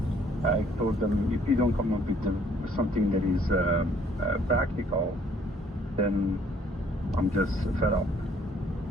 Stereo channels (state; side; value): normal; both; correlation 0.61